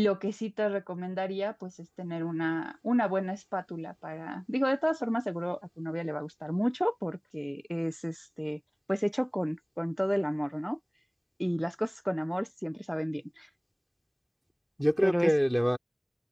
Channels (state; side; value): identical; both; correlation 1.00